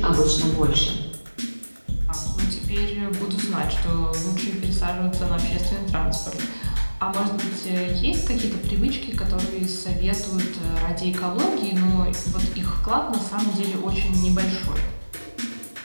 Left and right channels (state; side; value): inverted; both; correlation -1.00